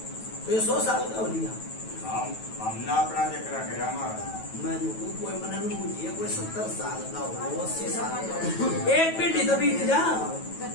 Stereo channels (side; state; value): right; late; 9.2 ms